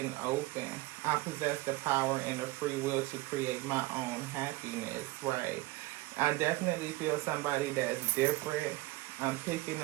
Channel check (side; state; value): left; quieter; 19.5 dB